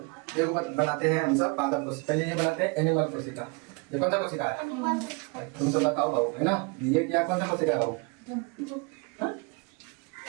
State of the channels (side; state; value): left; quieter; 31.3 dB